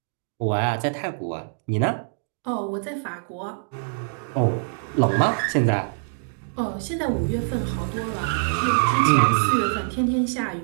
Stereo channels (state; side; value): silent; left; digital silence